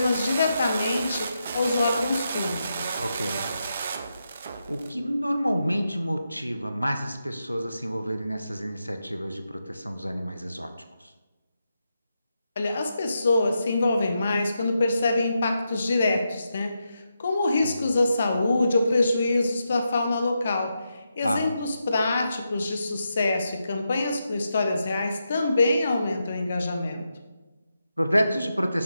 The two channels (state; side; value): inverted; both; correlation -0.86